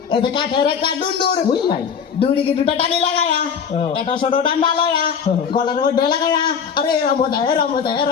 এই যে কাঠের একটা ডুন্ডুর ওই নাই ডুড়িকে দুটো টানি লাগায়া এটা ছোট ডান্ডা লয়া গলার মধ্যে লাগায়া আরে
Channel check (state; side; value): quieter; right; 6.8 dB